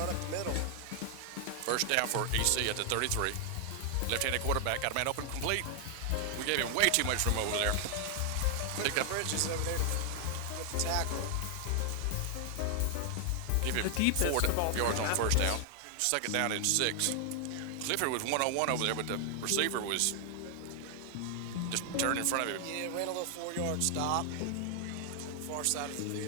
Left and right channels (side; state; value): both; different; correlation 0.00